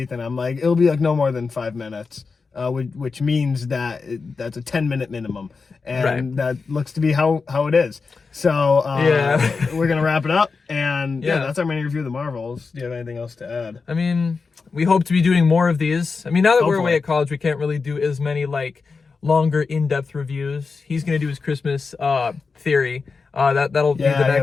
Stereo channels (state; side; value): quieter; right; 4.7 dB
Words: I'm like, it'll be like no more than 5 minutes, which means that that's a 10-minute minimum, and that looks to be how it is. So we're gonna wrap it up, and that's our mini review of the Marvels. Do you have anything else to add? I mean, we hope to be doing more of these. I mean, now that we're away at college, we can't really do as many like longer, in-depth reviews. He's gonna do his Christmas theory. That'll be the